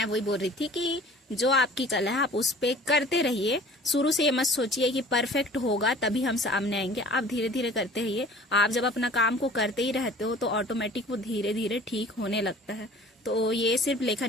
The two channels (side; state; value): both; normal; correlation 0.47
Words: वही बोल रही थी कि जो आपकी कला है आप उस पे करते रहिए। शुरू से ये मत सोचिए कि परफेक्ट होगा तभी हम सामने आएंगे। आप धीरे धीरे करते रहिए। आप जब अपना काम को करते ही रहते हो तो ऑटोमेटिक वो धीरे धीरे ठीक होने लगता है। तो ये सिर्फ